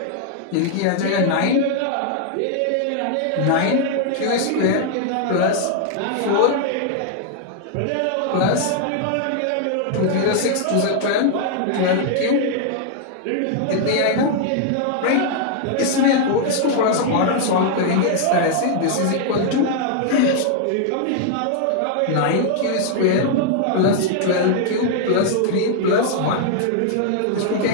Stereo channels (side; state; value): both; different; correlation 0.00